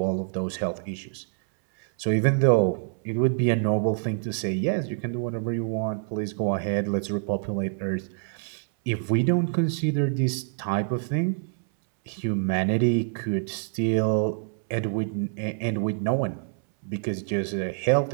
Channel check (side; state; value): left; silent; 61 dB below the other